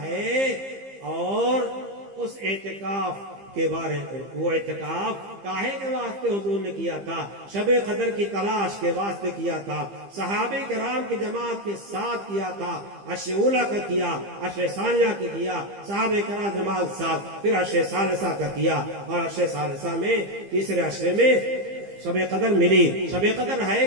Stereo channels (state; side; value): late; left; 15 ms